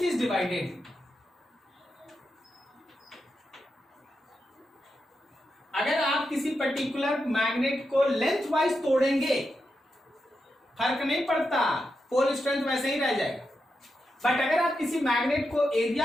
is divided। अगर आप किसी पर्टिकुलर मैग्नेट को लेंथ वाइज तोड़ेंगे फर्क नहीं पड़ता, पोल स्ट्रेंथ वैसे ही रह जाएगा। बट अगर आप किसी मैग्नेट को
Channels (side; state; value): both; normal; correlation 0.87